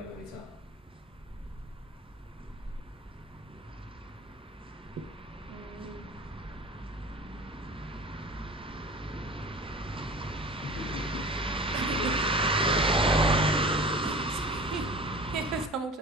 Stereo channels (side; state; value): both; normal; correlation 0.40